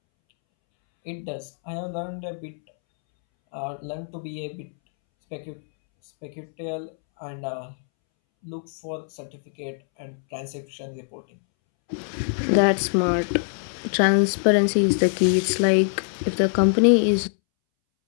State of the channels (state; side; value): silent; right; 63 dB below the other